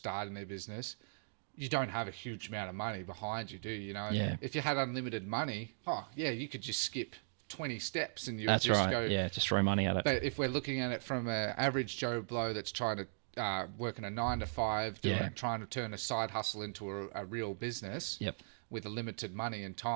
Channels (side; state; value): left; silent; digital silence